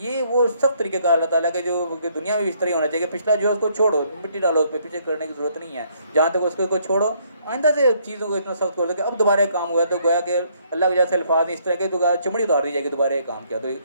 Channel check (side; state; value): both; inverted; correlation -0.68